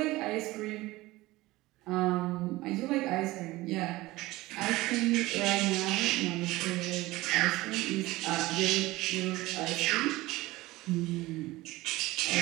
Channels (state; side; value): quieter; left; 19.2 dB